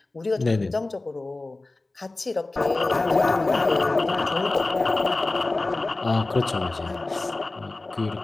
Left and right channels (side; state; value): right; quieter; 3.1 dB